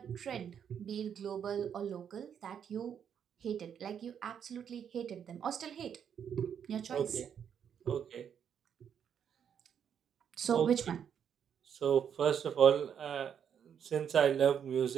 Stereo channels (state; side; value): quieter; left; 8.2 dB